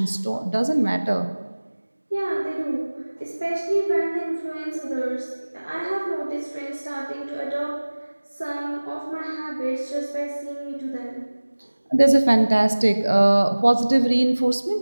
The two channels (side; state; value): both; inverted; correlation -1.00